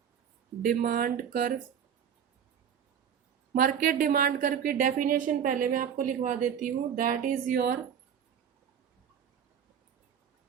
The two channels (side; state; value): left; quieter; 8.4 dB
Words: demand curve। Market demand curve की definition पहले मैं आपको लिखवा देती हूँ। That is your